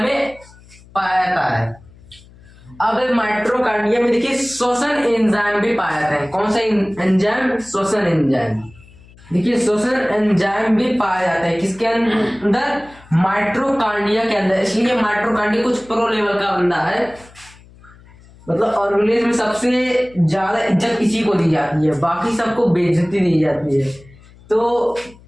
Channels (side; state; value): left; noise; hum, 24 dB below the sound